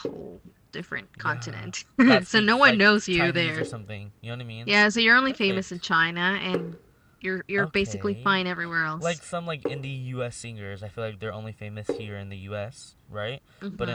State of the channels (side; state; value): both; identical; correlation 1.00